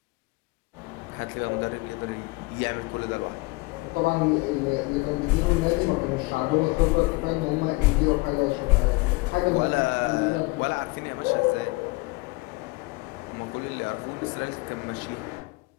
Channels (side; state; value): right; quieter; 25.0 dB